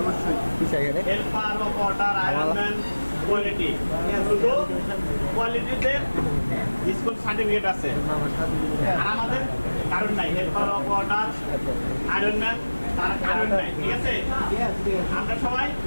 অবশ্যই। হেল্পার, অপারেটর, আয়রনম্যান, কোয়ালিটি, শুধু কোয়ালিটিতে স্কুল সার্টিফিকেট আছে। আর আমাদের কারণ নাই, হেল্পার, অপারেটর, আয়রনম্যান তার কারণ নাই, ঠিক আছে? আমরা সবাই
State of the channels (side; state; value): both; inverted; correlation -1.00